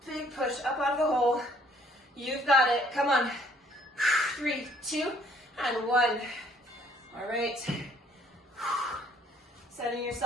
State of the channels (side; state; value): both; normal; correlation 0.62